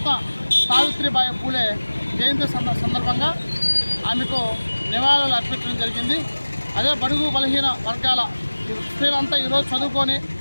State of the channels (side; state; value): both; inverted; correlation -1.00